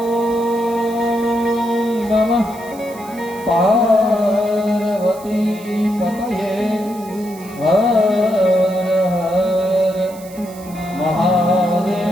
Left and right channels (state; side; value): noise; right; hiss, 20 dB below the sound